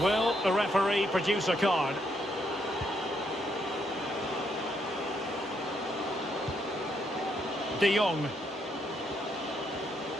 will the referee produce a card? De Jong.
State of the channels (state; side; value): normal; both; correlation 0.75